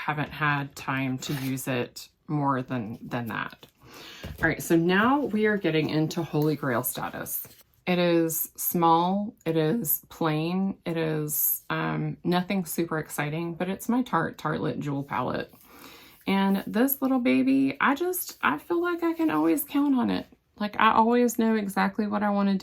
had time to use it more than that. All right, so now we are getting into Holy Grail status. It is small, it is plain, it is nothing super exciting, but it's my Tartelette Jewel palette. And this little baby, I feel like I can always count on it. Like I always know exactly what I want to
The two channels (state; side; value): identical; both; correlation 1.00